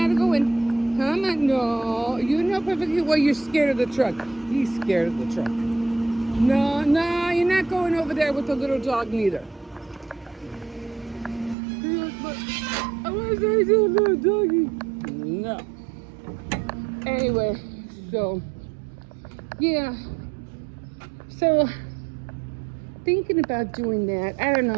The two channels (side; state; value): left; drops out; at 11.6 s